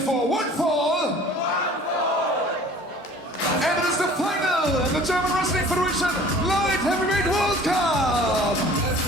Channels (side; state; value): both; normal; correlation 0.48